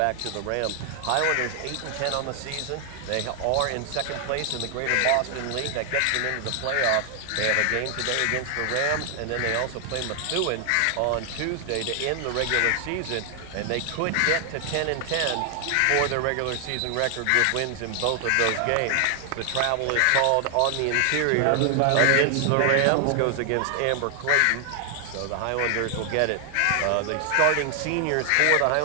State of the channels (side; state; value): both; different; correlation 0.00